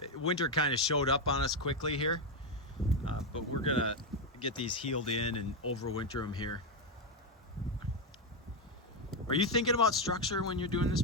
Winter kind of showed up on us quickly here, but we're gonna get these healed in and overwinter them here. Are you thinking about structure when you're doing this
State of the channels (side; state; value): both; normal; correlation 0.06